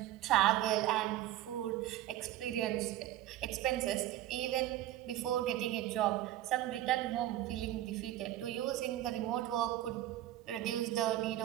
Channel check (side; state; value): left; quieter; 13.8 dB